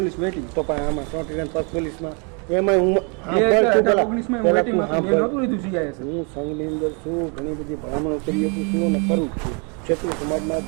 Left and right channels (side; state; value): left; quieter; 35.5 dB